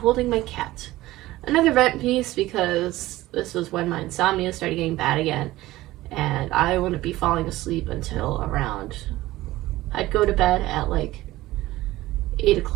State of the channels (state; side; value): quieter; left; 17.1 dB